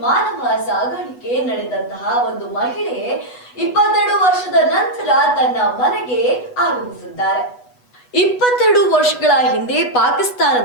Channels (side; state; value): right; late; 8.2 ms